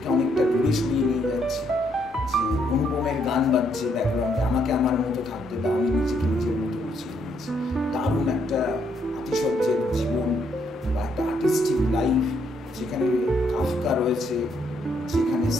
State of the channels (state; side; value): normal; both; correlation 0.73